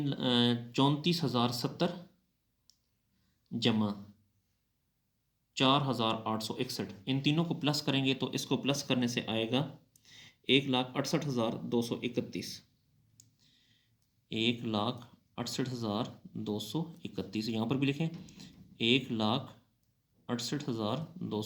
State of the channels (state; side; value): identical; both; correlation 1.00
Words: जमा 4,861, इन तीनों को प्लस करेंगे तो इसको प्लस करने से आएगा 1,68,231, 1,68,231, यहाँ पर भी लिखें